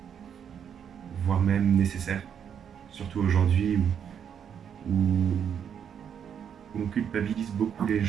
voire même nécessaire, surtout aujourd'hui où on culpabilise beaucoup les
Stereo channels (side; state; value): left; quieter; 8.1 dB